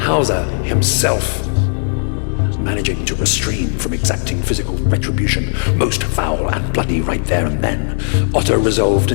himself managing to restrain from exacting physical retribution, most foul and bloody right there and then. Otto resolved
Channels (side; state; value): right; silent; 64 dB below the other